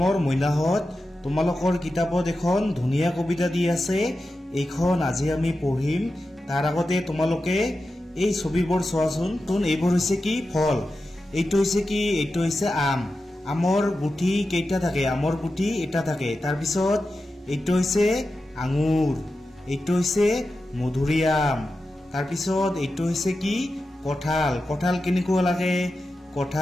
মইনাহঁত, তোমালোকৰ কিতাপত এখন ধুনীয়া কবিতা দি আছে, এইখন আজি আমি পঢ়িম। তাৰ আগতে তোমালোকে এই ছবিবোৰ চোৱাচোন। এইবোৰ হৈছে কি? ফল। এইটো হৈছে কি? এইটো হৈছে আম। আমৰ গুটি কেইটা থাকে? আমৰ গুটি এটা থাকে। তাৰপিছত এইটো হৈছে আঙুৰ, এইটো হৈছে মধুৰিআম। তাৰপিছত এইটো হৈছে কি? কঁঠাল। কঁঠাল কেনেকুৱা লাগে?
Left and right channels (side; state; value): both; normal; correlation 0.91